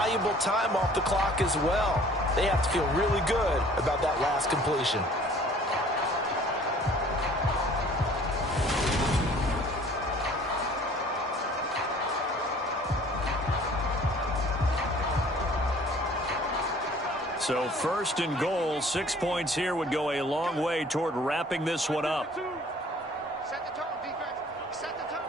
time off the clock as well. They have to feel really good about that last completion. So first and goal, 6 points here would go a long way toward wrapping this one up. Set the tone, defense. Set the tone,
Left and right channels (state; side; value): normal; both; correlation 0.52